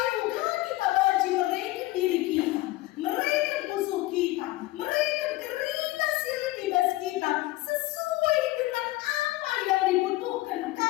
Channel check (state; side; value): quieter; right; 18.6 dB